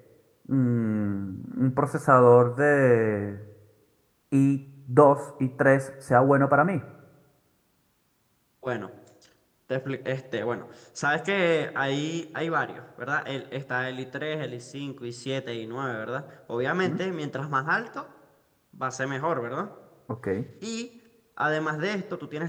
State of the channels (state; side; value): identical; both; correlation 1.00